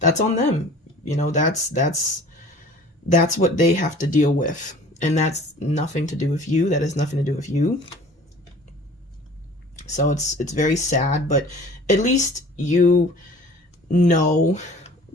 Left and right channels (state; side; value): normal; both; correlation 0.47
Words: on them. You know, that's what they have to deal with. And that's nothing to do with you. That has nothing to do with you. So it's very sad, but at least you know